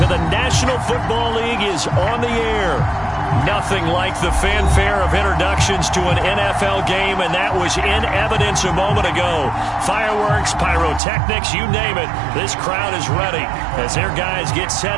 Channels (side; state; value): left; drops out; at 11.0 s